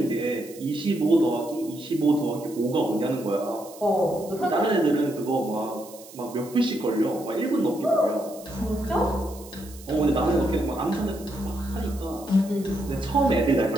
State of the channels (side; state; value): right; noise; hiss, 19 dB below the sound